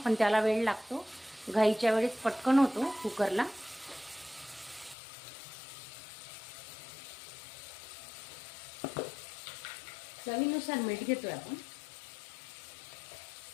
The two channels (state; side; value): drops out; right; at 5.0 s